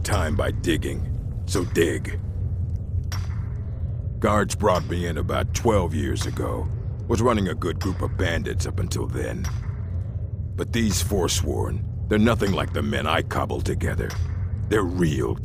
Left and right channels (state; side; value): identical; both; correlation 1.00